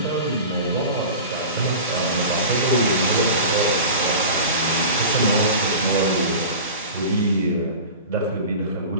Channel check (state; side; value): inverted; both; correlation -0.34